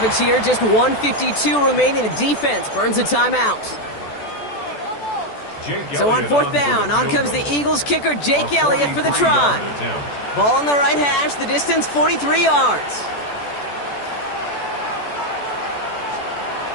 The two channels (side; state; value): right; late; 14 ms